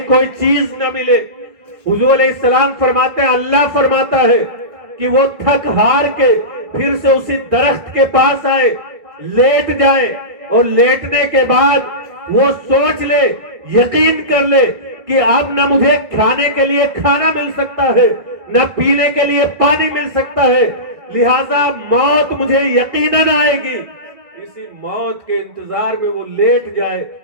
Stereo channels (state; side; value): late; left; 1.6 ms